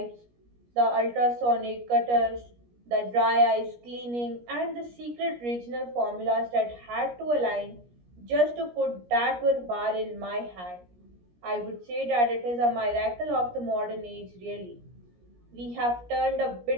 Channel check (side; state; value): left; late; 17 ms